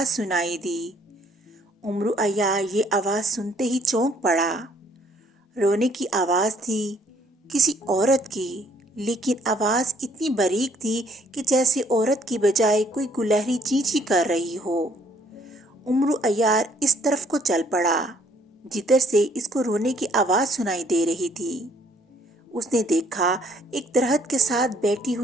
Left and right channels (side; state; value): both; normal; correlation 0.64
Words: سنائی دی۔ امرو عیار یہ آواز سنتے ہی چونک پڑا۔ رونے کی آواز تھی کسی عورت کی، لیکن آواز اتنی باریک تھی کہ جیسے عورت کی بجائے کوئی گلہری چینچی کر رہی ہو۔ امرو عیار اس طرف کو چل پڑا جدھر سے اس کو رونے کی آواز سنائی دے رہی تھی۔ اس نے دیکھا ایک درخت کے ساتھ بیٹھی